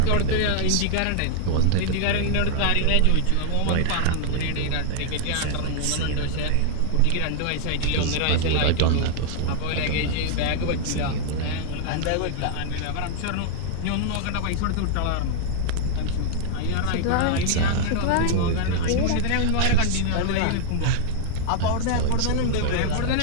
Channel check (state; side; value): different; both; correlation -0.01